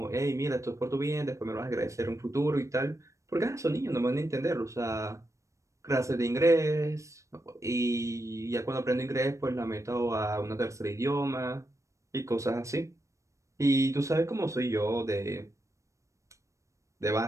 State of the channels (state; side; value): late; left; 0.15 ms